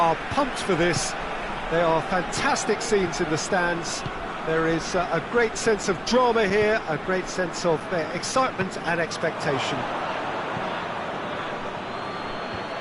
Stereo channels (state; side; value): identical; both; correlation 1.00